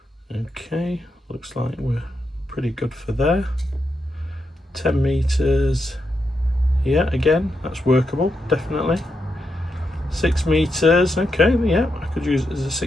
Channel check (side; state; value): both; normal; correlation 0.84